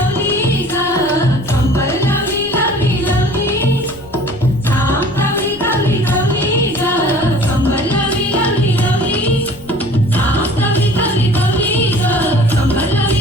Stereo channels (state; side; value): noise; left; rumble, 21 dB below the sound